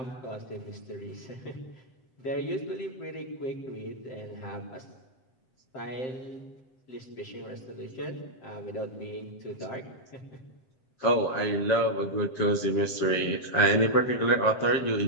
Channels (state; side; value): late; right; 7.7 ms